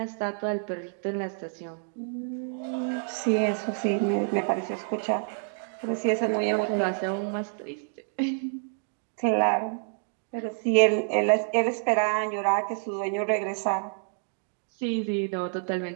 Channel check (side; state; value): left; silent; digital silence